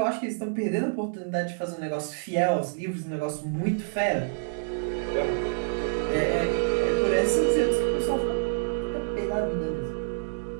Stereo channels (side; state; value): left; silent; digital silence